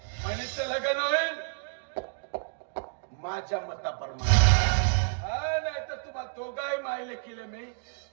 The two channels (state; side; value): silent; left; digital silence